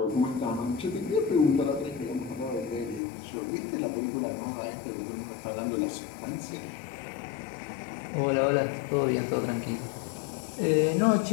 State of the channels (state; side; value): drops out; right; at 3.0 s